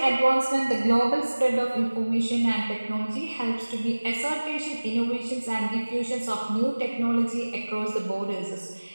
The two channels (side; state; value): both; inverted; correlation -1.00